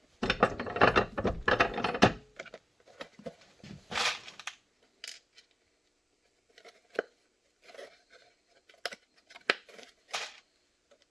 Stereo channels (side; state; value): both; normal; correlation 0.97